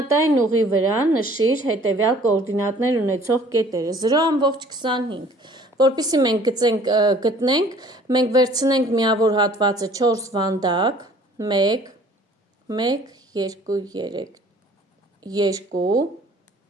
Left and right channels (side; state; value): both; normal; correlation 0.54